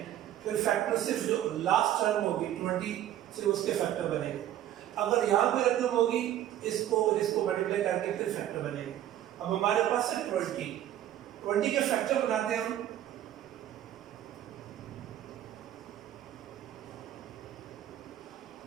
फिर फैक्टर सिर्फ जो लास्ट टर्म होगी 20 सिर्फ उसके फैक्टर बनेगा। अगर यहाँ पे रकम होगी, इसको मल्टीप्लाई करके फिर फैक्टर बनेगा। अब हमारे पास है 20 के फैक्टर बनाते हैं हम।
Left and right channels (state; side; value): quieter; left; 12.1 dB